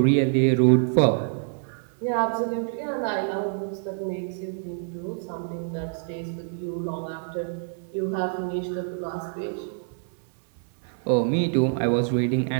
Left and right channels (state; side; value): silent; left; digital silence